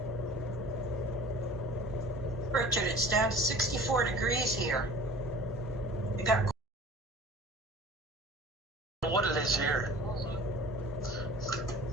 Richard, it's down to 64 degrees here. We got What it is here.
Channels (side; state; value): both; normal; correlation 0.44